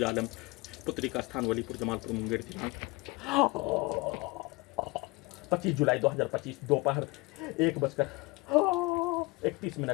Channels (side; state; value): right; quieter; 25.1 dB